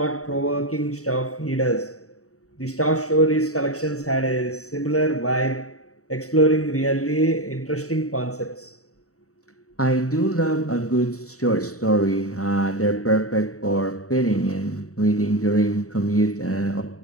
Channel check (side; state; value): right; late; 0.65 ms